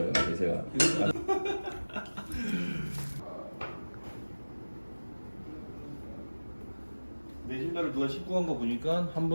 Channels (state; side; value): inverted; both; correlation -1.00